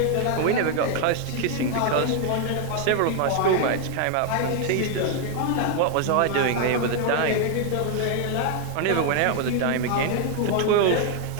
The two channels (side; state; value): both; different; correlation 0.00